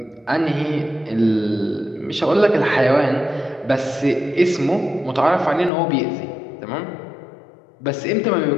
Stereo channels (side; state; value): right; drops out; at 5.7 s